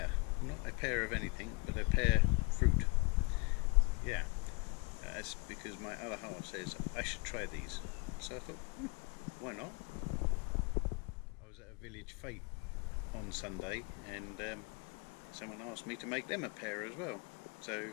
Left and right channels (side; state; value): right; quieter; 30.7 dB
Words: not a pear of anything, but a pear fruit. Yeah, that's because my other half says I should try these. So I thought, why not? I was at a village fete on Sunday and someone asked me to make them a pear as well. So